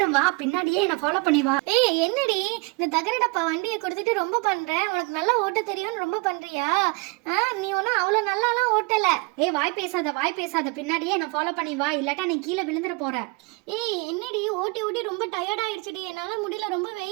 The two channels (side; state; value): left; quieter; 29.3 dB